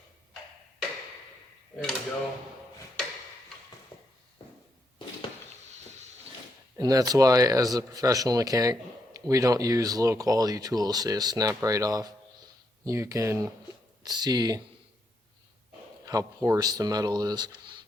There we go. And that's why, as a professional mechanic, we don't use low quality tools. They just snap right off. You can see how porous the metal is.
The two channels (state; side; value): normal; both; correlation 0.78